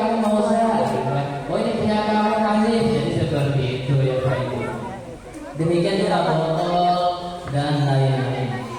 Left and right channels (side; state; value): both; identical; correlation 1.00